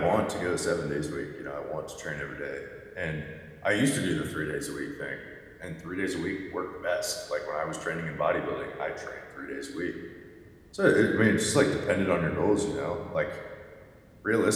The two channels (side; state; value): both; identical; correlation 1.00